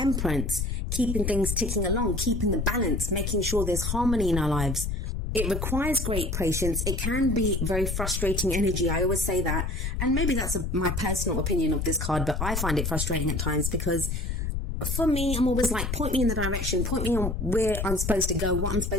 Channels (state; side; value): noise; left; rumble, 2 dB below the sound